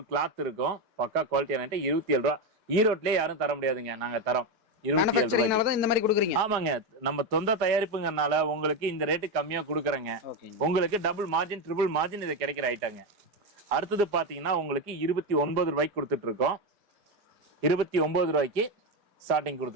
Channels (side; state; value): left; late; 4.9 ms